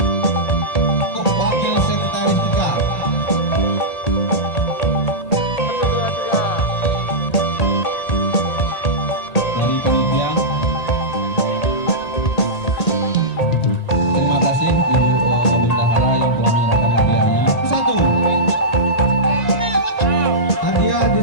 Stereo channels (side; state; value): right; late; 1.9 ms